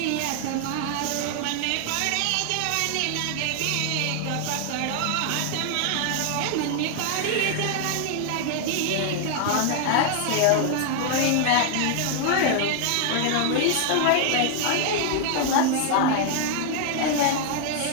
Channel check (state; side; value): different; both; correlation 0.00